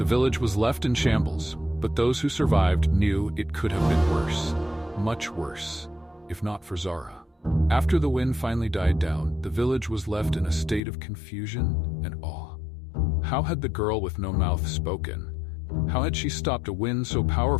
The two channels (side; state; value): right; drops out; at 10.8 s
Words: village was left in shambles, but those who survived knew it could have been worse. Much worse, if not for Zara. After the wind finally died down, the village was left in a state of confusion and awe. How had the girl with no mouth spoken? How had she stopped a wind so